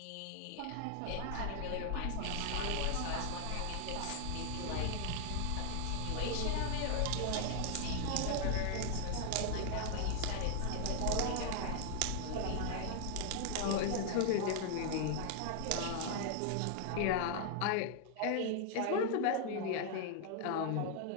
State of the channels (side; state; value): both; different; correlation 0.00